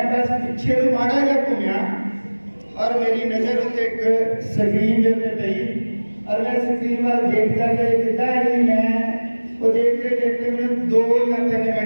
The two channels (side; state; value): both; inverted; correlation -1.00